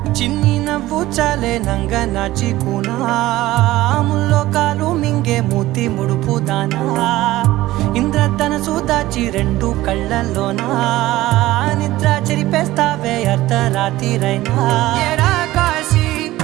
చిన్ని నవ్వు చాలే నంగ నాచి కూనాముల్లో కాలు మింగే మూతి ముడుపు దానా ఇంద్రధనసు దాచి రెండు కళ్ళల్లోనా నిద్ర చెరిపేస్తావే అర్ధరాత్రిరైనా ఏడా కాశీ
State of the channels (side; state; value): left; quieter; 16.7 dB